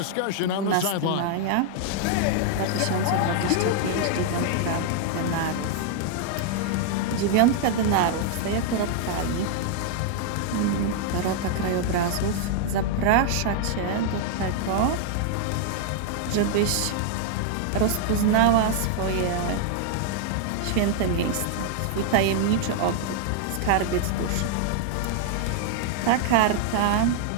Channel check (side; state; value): both; different; correlation 0.00